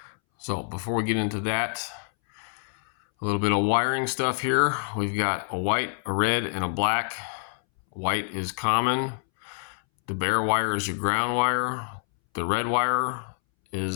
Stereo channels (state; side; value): silent; right; 60 dB below the other